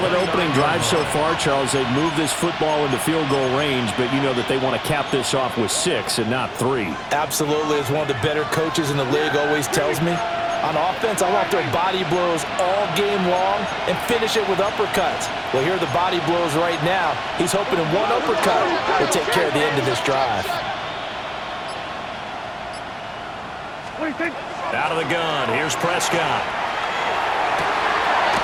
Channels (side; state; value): both; identical; correlation 1.00